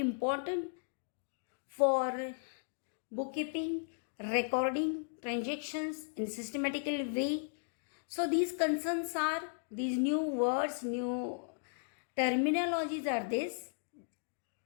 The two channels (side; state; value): right; silent; digital silence